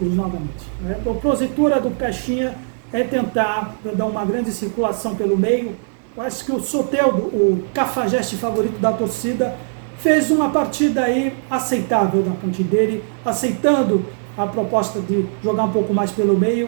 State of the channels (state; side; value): silent; left; 66 dB below the other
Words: novamente. Né? A propositura do Caixinha é tentar dar uma grande circulação pelo meio. Eu acho que o Soteldo, o cafajeste favorito da torcida, fez uma partida aí aceitável da parte dele, aceitando a proposta de jogar um pouco mais pelo meio,